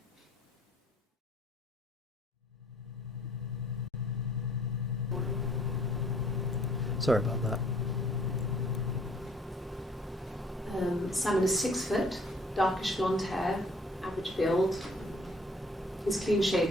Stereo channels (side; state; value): both; normal; correlation 0.58